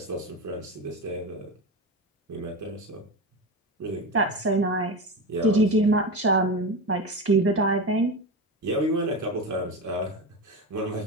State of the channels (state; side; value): normal; both; correlation 0.21